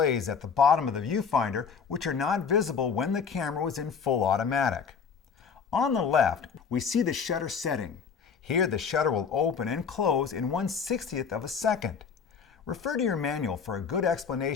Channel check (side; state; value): right; quieter; 6.2 dB